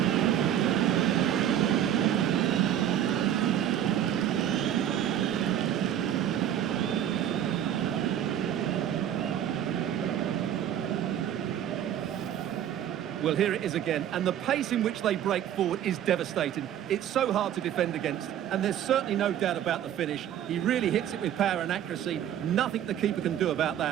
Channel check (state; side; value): quieter; left; 10.5 dB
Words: Well, here it is again, and the pace in which they break forward is devastating. It's so hard to defend against, and there's certainly no doubt about the finish. He really hits it with power and accuracy. Nothing the keeper can do about